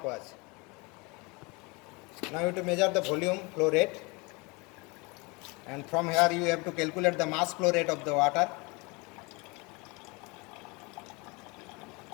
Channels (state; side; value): quieter; right; 27.4 dB